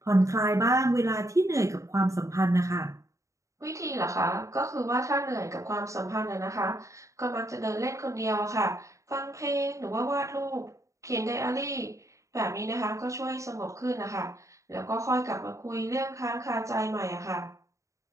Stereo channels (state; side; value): late; left; 0.15 ms